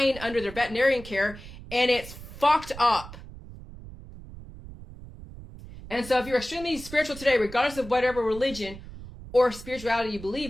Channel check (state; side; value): noise; right; rumble, 15 dB below the sound